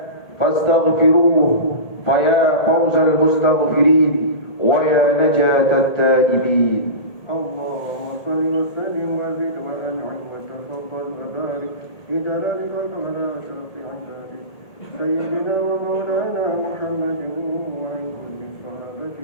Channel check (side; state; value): right; late; 1.8 ms